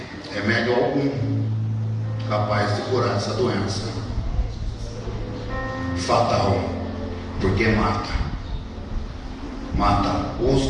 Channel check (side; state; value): both; identical; correlation 1.00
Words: remédio algum capaz de curar essa doença. Fatal, porque mata o